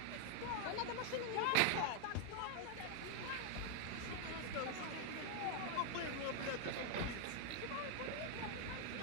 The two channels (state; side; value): different; both; correlation 0.00